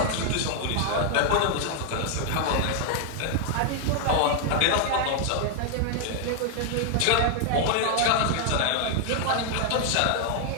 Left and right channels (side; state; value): both; different; correlation 0.00